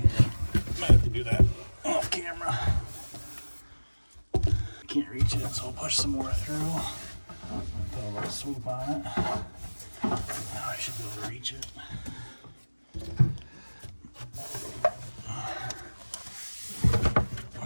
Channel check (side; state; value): both; inverted; correlation -1.00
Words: Might have to do that off camera. I can't reach it, so I'll push some more through. Put a little swoop on it. Now I should be able to reach it.